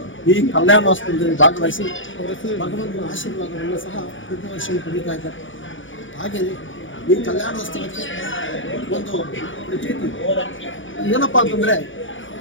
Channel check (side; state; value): right; late; 0.56 ms